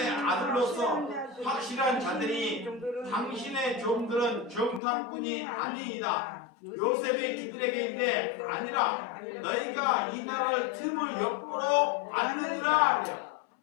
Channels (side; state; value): right; drops out; at 4.8 s